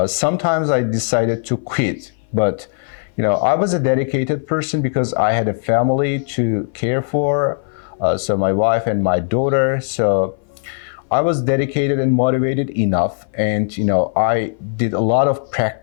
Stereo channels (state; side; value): silent; right; 59 dB below the other